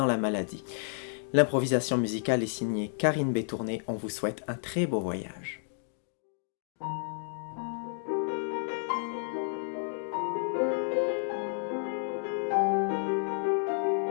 la maladie. L'improvisation musicale est signée Karine Bétourné. On vous souhaite un très beau voyage.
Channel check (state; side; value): silent; right; digital silence